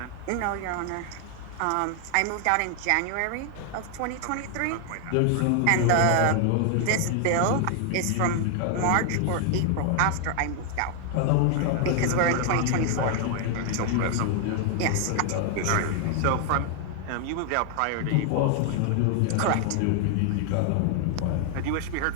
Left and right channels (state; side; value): different; both; correlation 0.00